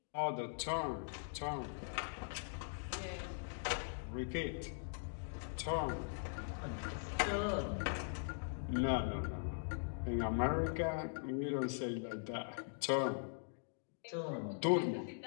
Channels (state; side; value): silent; right; digital silence